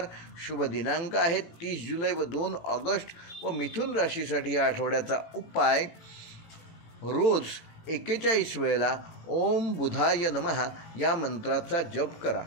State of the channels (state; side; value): late; right; 18 ms